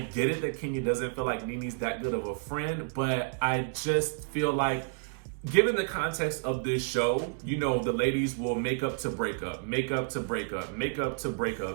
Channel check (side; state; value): left; silent; digital silence